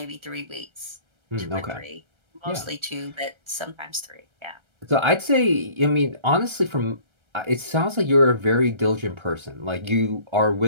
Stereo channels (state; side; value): late; left; 1.3 ms